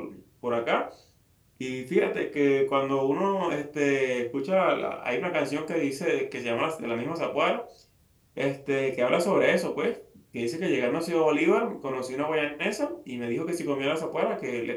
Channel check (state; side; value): identical; both; correlation 1.00